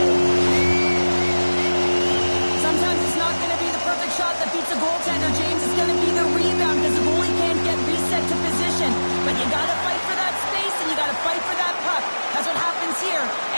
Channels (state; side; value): inverted; both; correlation -1.00